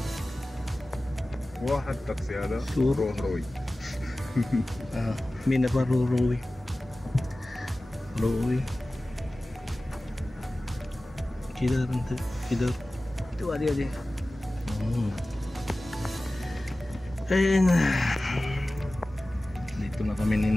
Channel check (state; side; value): normal; both; correlation 0.96